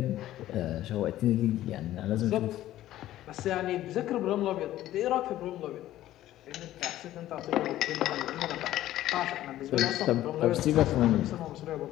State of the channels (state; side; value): quieter; right; 13.9 dB